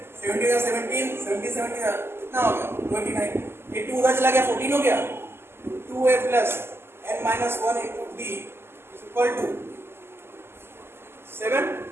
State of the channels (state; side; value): late; left; 0.12 ms